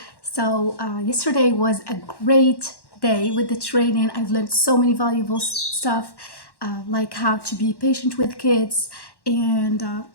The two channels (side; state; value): right; late; 1.1 ms